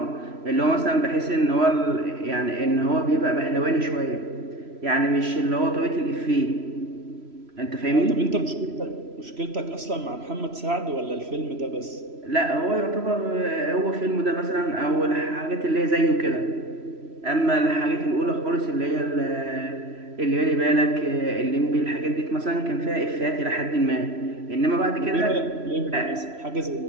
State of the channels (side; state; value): left; late; 3.0 ms